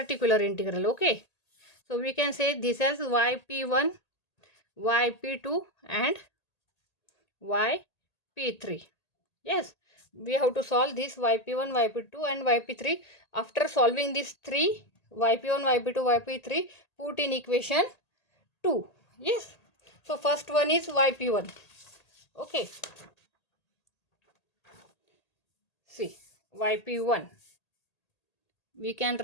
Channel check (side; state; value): right; late; 1.8 ms